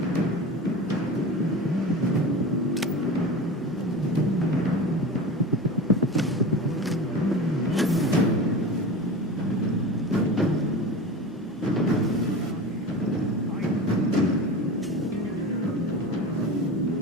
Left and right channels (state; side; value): normal; both; correlation 0.31